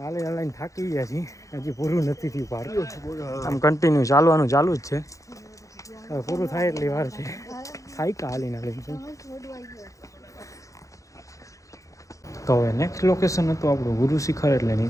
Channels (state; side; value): late; right; 0.16 ms